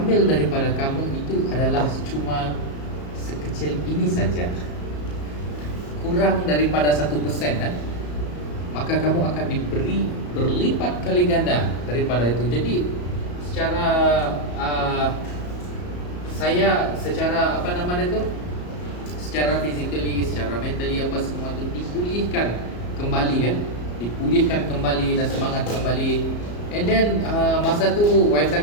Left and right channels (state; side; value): late; right; 34 ms